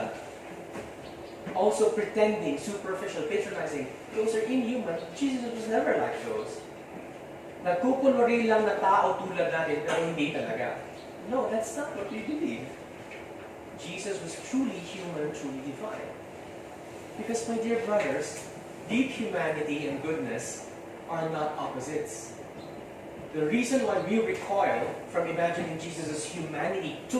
Also pretending, superficial, patronizing. Those are inhuman. Jesus was never like those. Nagkukunwari lang na tao tulad natin, pero hindi talaga. No, that's not what we believe. Jesus was truly human, truly divine. Because, my dear brothers, deep humanity and goodness are not opposites. The reason why we recoil from imagining Jesus' humanity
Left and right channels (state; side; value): identical; both; correlation 1.00